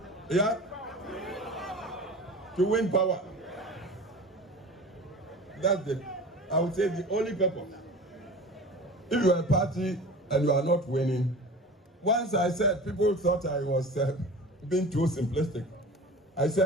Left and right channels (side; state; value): both; normal; correlation 0.36